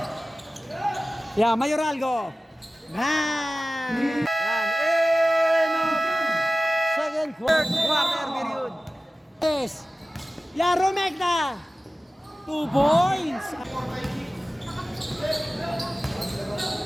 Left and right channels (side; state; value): both; normal; correlation 0.96